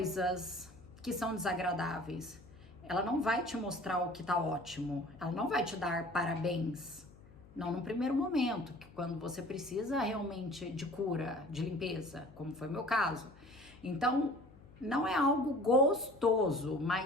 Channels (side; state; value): left; noise; hum, 23 dB below the sound